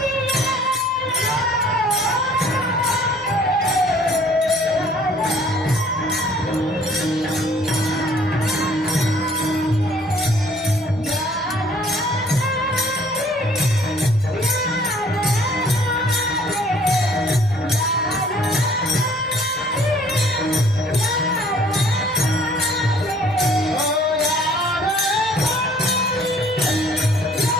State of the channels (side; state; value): both; normal; correlation 0.57